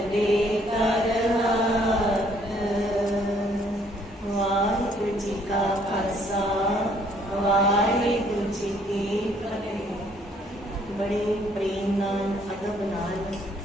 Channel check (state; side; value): normal; both; correlation 0.64